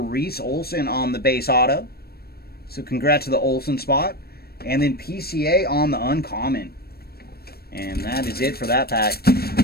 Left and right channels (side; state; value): right; late; 0.45 ms